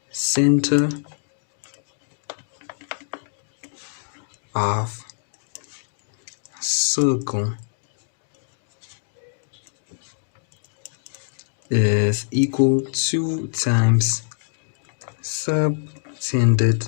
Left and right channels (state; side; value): silent; right; digital silence